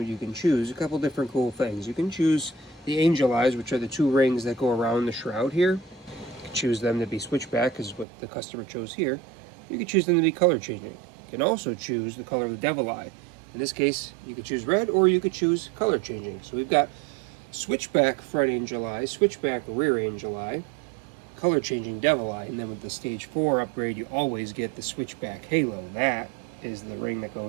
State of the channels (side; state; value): left; drops out; at 8.1 s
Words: you can choose a couple different cool things. You can choose the angel eyes, which are the two rings that go around the shroud here. You can choose them to be switchback, is what the customer chose here. You can choose them to be color changing. You can also choose the color of the devil eye. In this case, you could choose red or you could choose color changing. So we've got switchback front angel eye, switchback rear angel eye, color changing devil eye, and then with the stage 4 upgrade you always get the switchback halo. That is the ring that